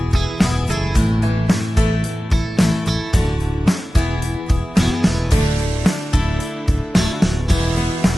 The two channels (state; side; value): normal; both; correlation 0.95